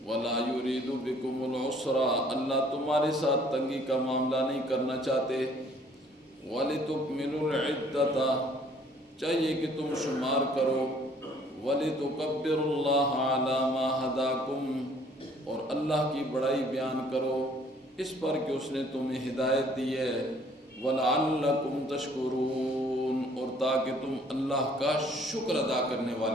ولا یرید بکم العسر، اللہ تمہارے ساتھ تنگی کا معاملہ نہیں کرنا چاہتے. وَلِتُكْمِلُوا الْعِدَّةَ، چاہیے کہ تم شمار کرو. وَلِتُكَبِّرُوا اللَّهَ عَلَى مَا هَدَاكُمْ، اور اللہ کی بڑائی بیان کرو اس پر کہ اس نے تمہیں ہدایت دی ہے. وَلَعَلَّكُمْ تَشْكُرُونَ، اور تاکہ تم اللہ کا شکر ادا کرنے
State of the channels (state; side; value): normal; both; correlation 0.59